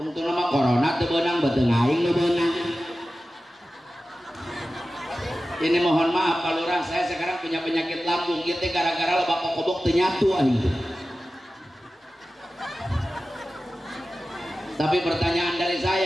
nama corona teu beunang beuteung aing nu beunang. Ini mohon maaf Pak Lurah, saya sekarang punya penyakit lambung, ieu teh gara-gara loba kokobok teu nyatu aing. Tapi pertanyaan dari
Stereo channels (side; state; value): both; normal; correlation 0.95